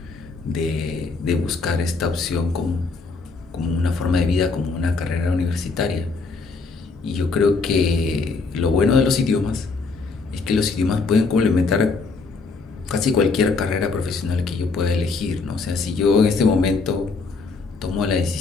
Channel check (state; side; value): quieter; right; 4.2 dB